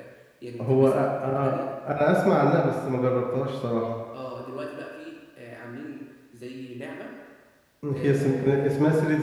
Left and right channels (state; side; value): identical; both; correlation 1.00